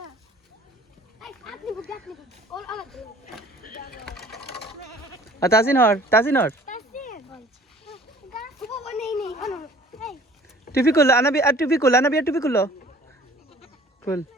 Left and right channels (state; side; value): normal; both; correlation 0.51